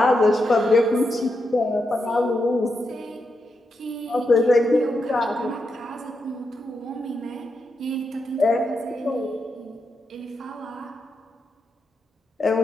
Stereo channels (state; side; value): normal; both; correlation 0.84